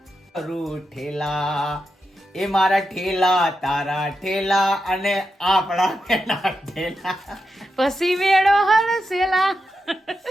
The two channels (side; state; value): both; normal; correlation 0.87